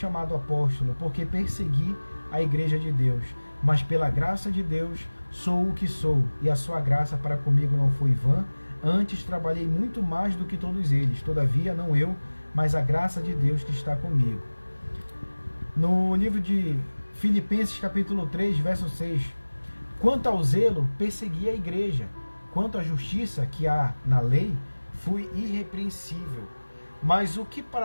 apóstolo, porque persegui a igreja de Deus. Mas pela graça de Deus sou o que sou, e a sua graça para comigo não foi vã. Antes trabalhei muito mais do que todos eles, todavia não eu, mas a graça de Deus que está comigo. No livro de Filipenses, capítulo 3, verso 6, quanto ao zelo, persegui a igreja, quanto à justiça que há na lei, fui irrepreensível. Mas o que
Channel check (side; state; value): both; inverted; correlation -1.00